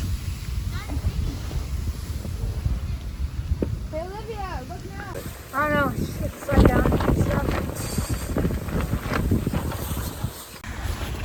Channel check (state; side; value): identical; both; correlation 1.00